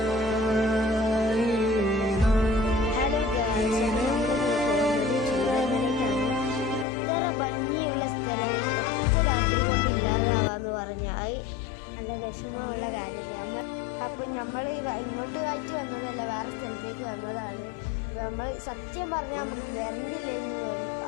വിഷമമുള്ള കാര്യമാണ്. അപ്പം നമ്മൾ ഇങ്ങോട്ട് ആയിട്ട് വന്നതല്ല, വേറെ സ്ഥലത്തേക്ക് വന്നതാണ്. നമ്മൾ സത്യം പറഞ്ഞാൽ നമ്മൾ വരണ്ടില്ലെന്ന് തോന്നി.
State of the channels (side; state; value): right; drops out; at 6.9 s